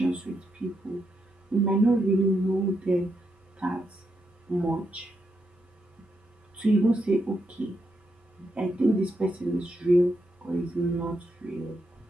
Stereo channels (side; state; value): both; normal; correlation 0.82